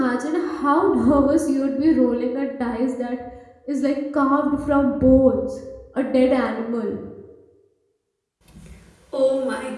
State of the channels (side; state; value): both; identical; correlation 1.00